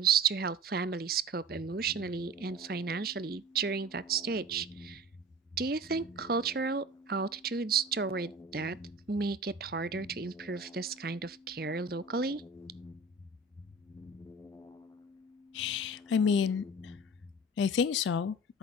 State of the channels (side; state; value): both; normal; correlation 0.39